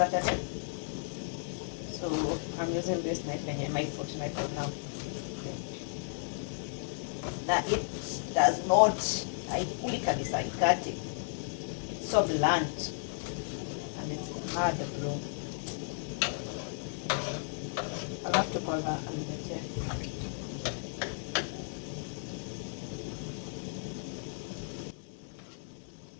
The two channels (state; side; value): silent; right; digital silence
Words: So I'm using this knife and my foot knife now. Now it does not, haikuli kabisa, haikati. It's so blunt and it's hard bro. I'll have to call her and get it.